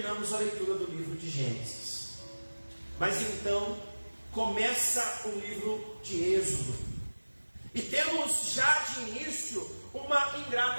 a leitura do livro de Gênesis. Mas então começa o livro de Êxodo e temos já de início uma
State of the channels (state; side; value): inverted; both; correlation -1.00